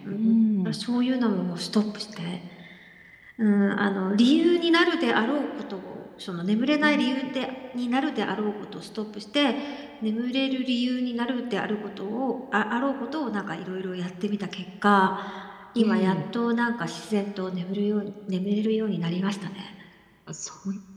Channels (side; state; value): both; identical; correlation 1.00